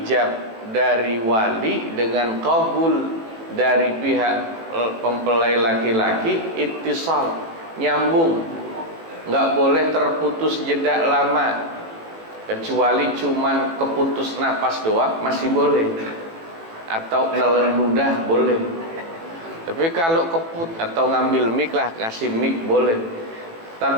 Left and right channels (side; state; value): left; late; 18 ms